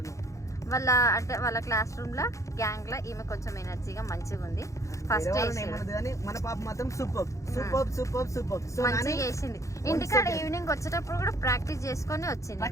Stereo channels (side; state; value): right; late; 0.15 ms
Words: నువ్వు. వాళ్ళ క్లాస్ రూమ్ లో గ్యాంగ్ లో ఈమె కొంచెం ఎనర్జీగా మంచిగా ఉంది. ఫస్ట్ మన పాప మాత్రం సూపర్ సూపర్ సూపర్ సూపర్ మంచిగా చేసింది. ఇంటికాడ ఈవినింగ్ వచ్చేటప్పుడు కూడా ప్రాక్టీస్ చేసుకొని వచ్చింది.